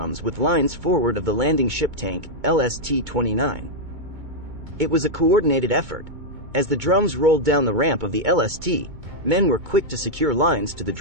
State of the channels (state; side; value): late; left; 2.2 ms